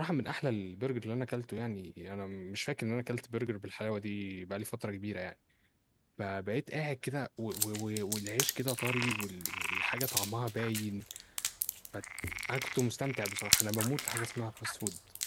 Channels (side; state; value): both; identical; correlation 1.00